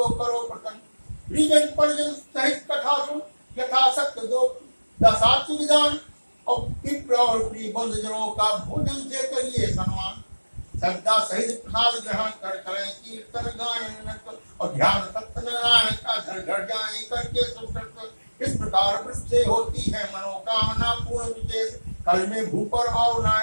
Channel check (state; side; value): inverted; both; correlation -1.00